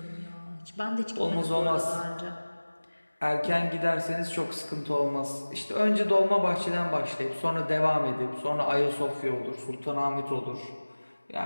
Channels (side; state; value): both; inverted; correlation -1.00